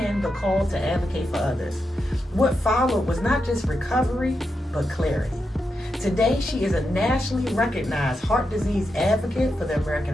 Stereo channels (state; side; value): normal; both; correlation 0.86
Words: the call to advocate for others. What followed was not just recovery, but clarity. Today, she is a nationally recognized heart disease advocate for the American